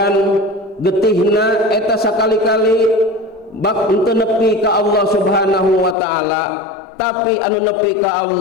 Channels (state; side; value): drops out; right; at 6.0 s